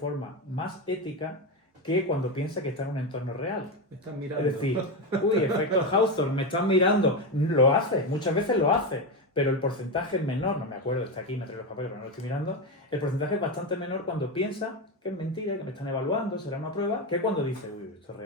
más ética que cuando piensa que está en un entorno real. Me están mirando. Es decir, uy, efecto Hawthorne, me están mirando. Lo hace, muchas veces lo hace, pero el porcentaje es menor, no me acuerdo, está aquí, me traigo los papeles, pero no lo estoy mirando. El porcentaje es bastante menor cuando piensa que es mentira, que me están evaluando, será una prueba, que cuando dice, uy, esto es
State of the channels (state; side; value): normal; both; correlation 0.14